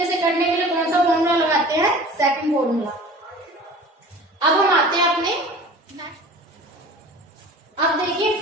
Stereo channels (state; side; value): normal; both; correlation 0.41